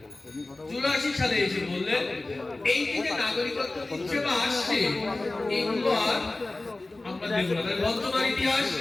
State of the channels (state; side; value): quieter; right; 3.0 dB